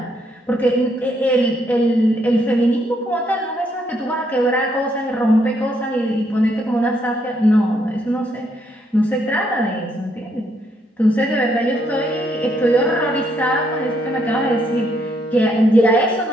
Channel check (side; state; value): both; normal; correlation 0.73